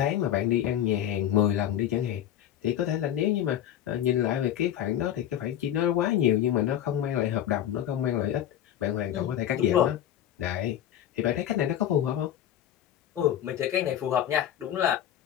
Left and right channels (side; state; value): right; quieter; 10.9 dB